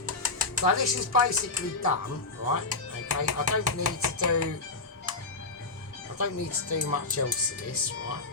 So this is basically done, right? Okay, I don't need to do much else to this, right?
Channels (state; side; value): quieter; right; 3.6 dB